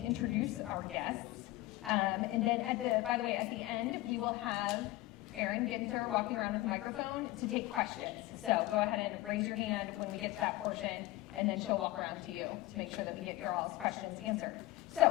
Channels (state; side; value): quieter; right; 18.2 dB